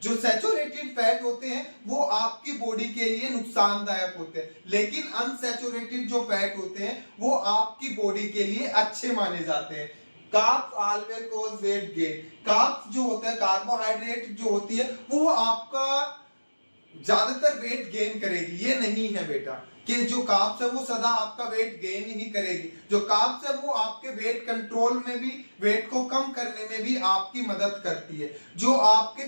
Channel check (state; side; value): inverted; both; correlation -1.00